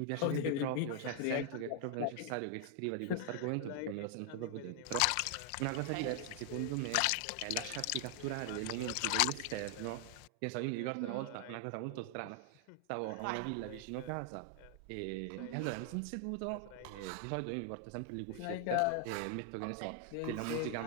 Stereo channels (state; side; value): different; both; correlation 0.00